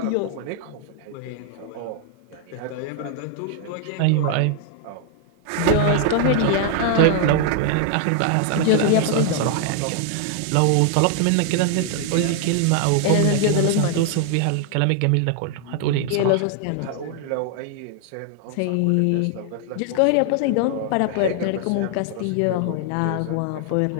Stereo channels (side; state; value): both; different; correlation 0.00